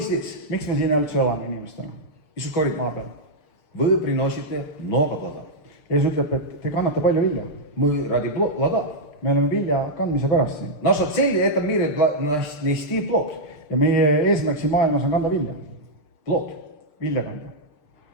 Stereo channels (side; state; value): right; late; 6.6 ms